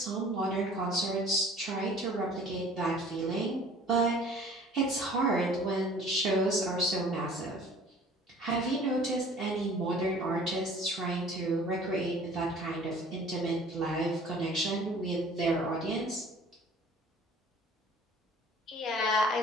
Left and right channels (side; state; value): both; normal; correlation 0.50